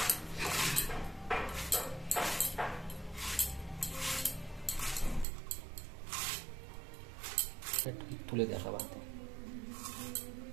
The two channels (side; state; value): left; drops out; at 5.2 s